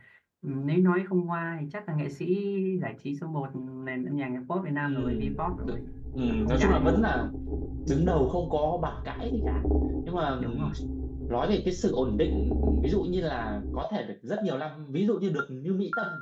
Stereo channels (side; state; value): both; identical; correlation 1.00